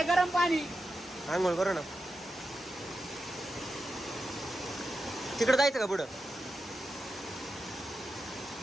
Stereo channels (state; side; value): normal; both; correlation 0.90